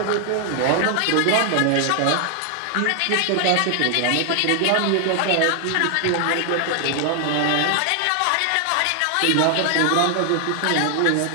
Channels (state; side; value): different; both; correlation 0.00